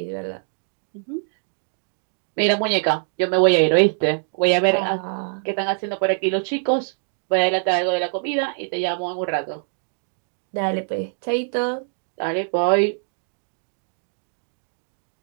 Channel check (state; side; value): silent; left; digital silence